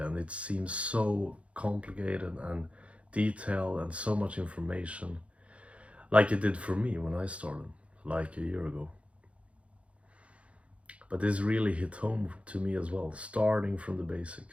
and it seems so complicated and detailed and so much information, like it did for me when I started like a year ago. But this really hit home to me as well, starting from the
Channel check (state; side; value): late; left; 0.062 ms